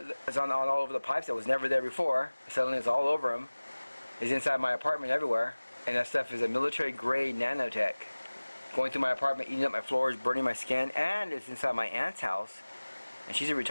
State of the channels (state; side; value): inverted; both; correlation -1.00